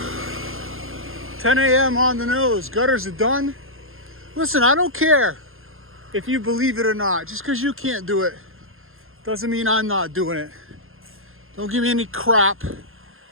10 a.m. on the nose. Gutters are done. Listen, I don't care if you believe it or not. Just because you can't do it doesn't mean I'm not doing it. Don't give me any crap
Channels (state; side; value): late; left; 0.60 ms